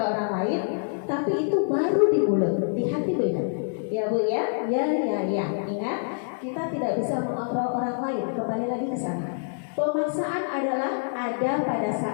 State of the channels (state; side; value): silent; right; digital silence